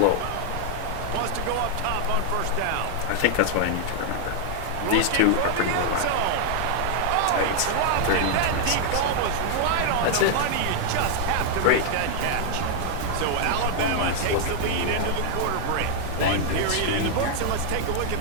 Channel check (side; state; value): both; different; correlation 0.00